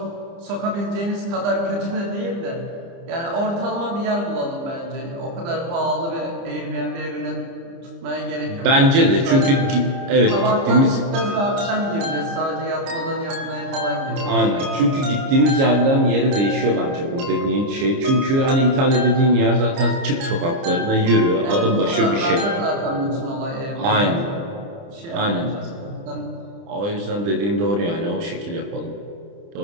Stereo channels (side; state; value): left; late; 30 ms